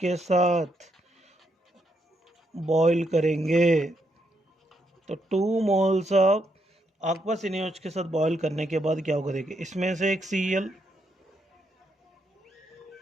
साथ बॉईल करेंगे। तो 2 मोल्स ऑफ aqueous NaOH के साथ बॉईल करने के बाद क्या होगा, देखिए इसमें से एक Cl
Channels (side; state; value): both; normal; correlation 0.78